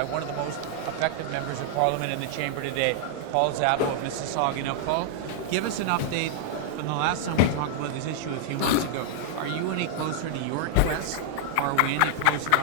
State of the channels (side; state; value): both; different; correlation -0.01